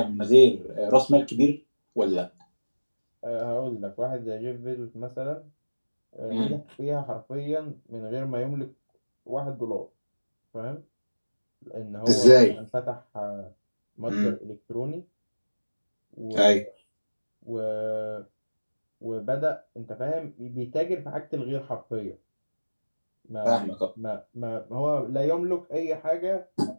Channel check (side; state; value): both; inverted; correlation -1.00